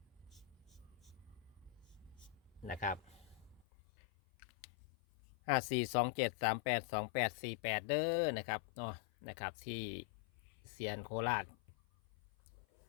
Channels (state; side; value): drops out; right; at 3.7 s